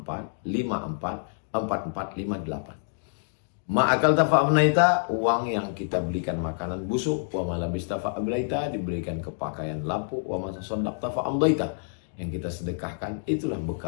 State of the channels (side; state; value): right; silent; digital silence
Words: 54 4458. Ma'akal tafa'abnaita, uang yang kita belikan makanan busuk. Wa malabis tafa'ablaita, diberikan kepakaian lapuk. Wa masasondak tafa'amdaita, yang kita sedekahkan, itulah